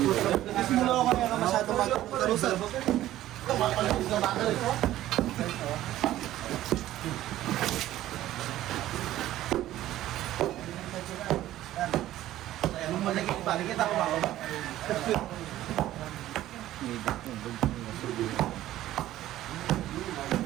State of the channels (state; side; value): quieter; left; 14.1 dB